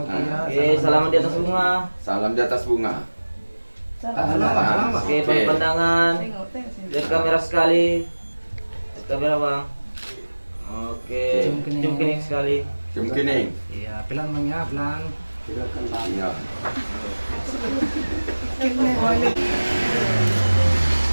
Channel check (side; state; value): both; inverted; correlation -1.00